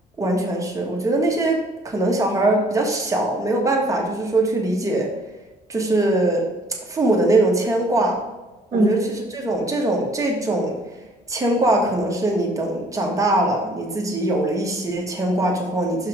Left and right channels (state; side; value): normal; both; correlation 0.59